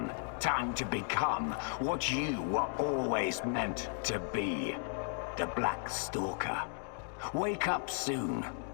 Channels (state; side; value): silent; right; 54 dB below the other